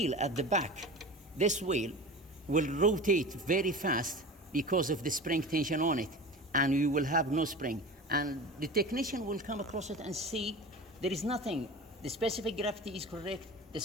at the back, this wheel will rotate very fast because of the spring tension on it, and you will have no spring. And the technician will come across it and see there is nothing. The specific gravity is correct. The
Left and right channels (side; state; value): both; normal; correlation 0.33